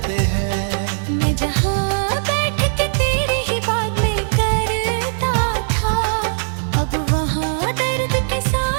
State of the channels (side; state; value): left; silent; digital silence